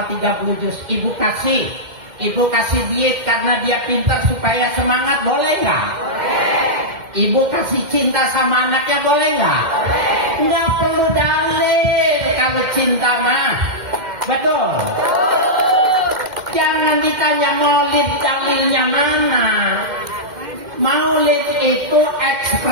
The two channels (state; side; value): late; left; 2.1 ms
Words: 30 juz. Ibu kasih diet karena dia pinter supaya semangat, boleh nggak? Ibu kasih cinta sama anaknya, boleh nggak? Nggak perlu dalil kalau cinta mah, betul? Jangan ditanya maulid dalilnya mana. Maulid itu